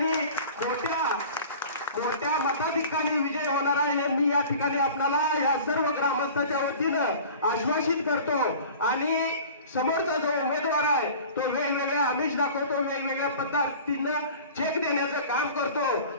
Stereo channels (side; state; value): both; inverted; correlation -0.41